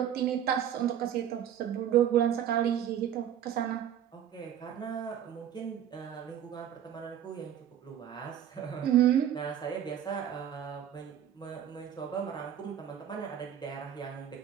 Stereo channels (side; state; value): left; quieter; 9.9 dB